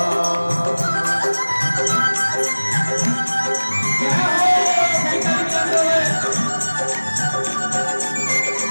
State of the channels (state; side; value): inverted; both; correlation -1.00